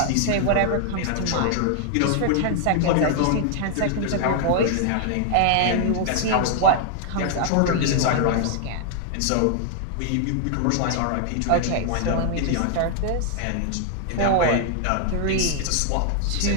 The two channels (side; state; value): both; different; correlation 0.00